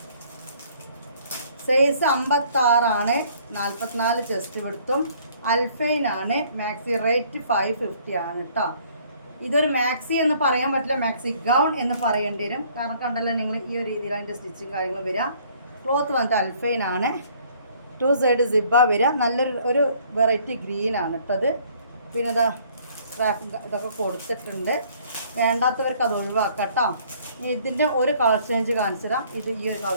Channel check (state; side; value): inverted; both; correlation -0.60